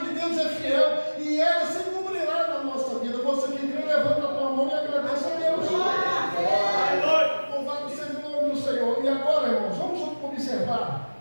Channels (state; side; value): inverted; both; correlation -1.00